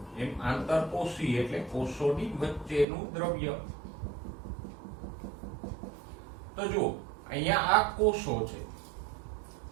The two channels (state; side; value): drops out; left; at 2.9 s